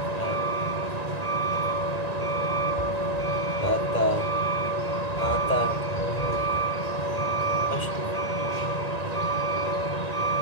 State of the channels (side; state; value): right; late; 1.9 ms